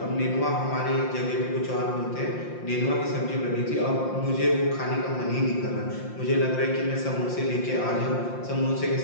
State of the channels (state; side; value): late; right; 5.7 ms